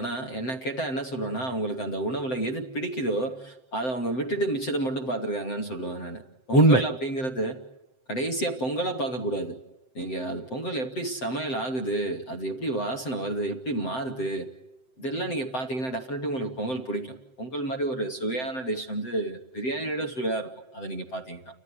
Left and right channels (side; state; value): right; late; 7.8 ms